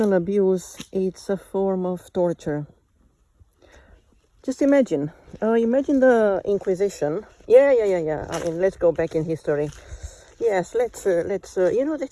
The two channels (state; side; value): identical; both; correlation 1.00